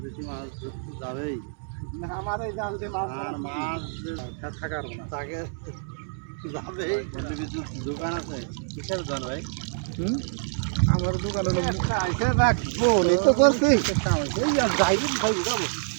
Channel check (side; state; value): left; silent; digital silence